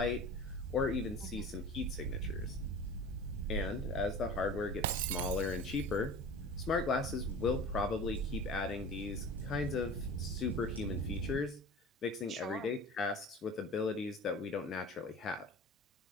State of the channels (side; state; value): both; normal; correlation 0.37